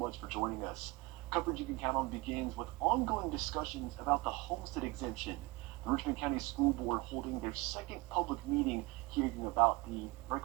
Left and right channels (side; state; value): left; quieter; 23.1 dB